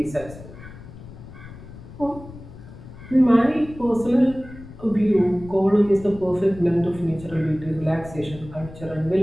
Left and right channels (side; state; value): left; noise; rumble, 16 dB below the sound